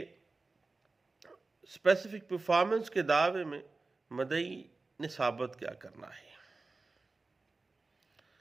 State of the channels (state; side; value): quieter; left; 3.6 dB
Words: اسپیسیفک پرفارمنس کے دعوے میں مدعی نے ثابت کیا کرنا ہے۔